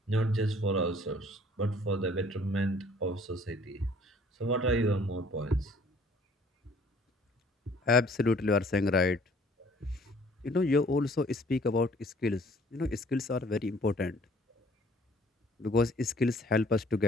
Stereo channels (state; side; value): normal; both; correlation 0.57